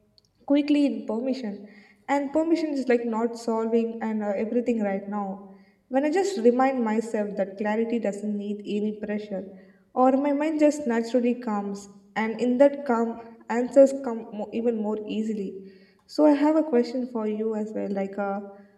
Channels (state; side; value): identical; both; correlation 1.00